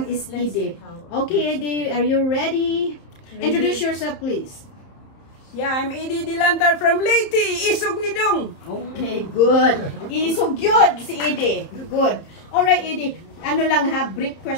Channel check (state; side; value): late; right; 31 ms